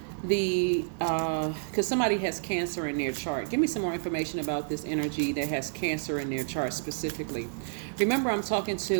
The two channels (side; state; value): left; silent; digital silence